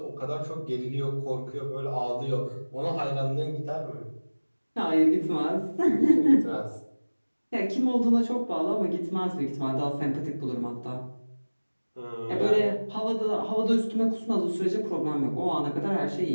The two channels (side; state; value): both; inverted; correlation -1.00